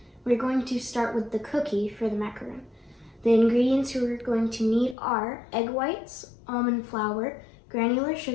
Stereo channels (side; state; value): right; drops out; at 5.0 s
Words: We're going to start with the cookie for the macaroon. The ingredients we're going to need are egg whites, almond flour, granular